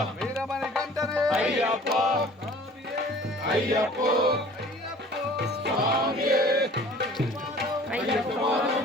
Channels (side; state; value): both; normal; correlation 0.48